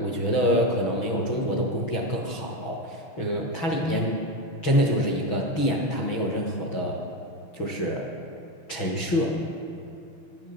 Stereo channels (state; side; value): late; right; 6.2 ms